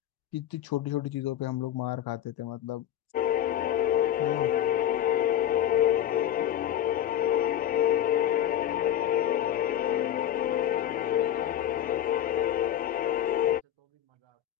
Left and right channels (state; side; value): quieter; right; 11.4 dB